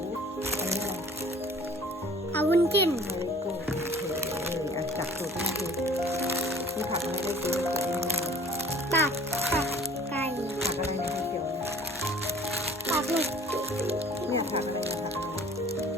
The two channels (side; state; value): both; normal; correlation 0.49